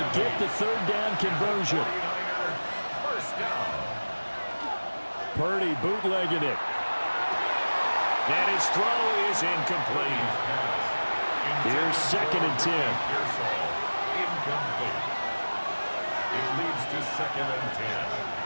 get the 3rd down conversion. First down. Purdy bootlegging it. And his throw is incomplete. Here's 2nd and 10. Incomplete. It leads to 2nd and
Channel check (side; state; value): both; inverted; correlation -1.00